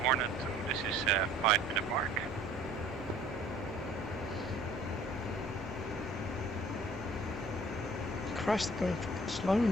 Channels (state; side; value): normal; both; correlation 0.53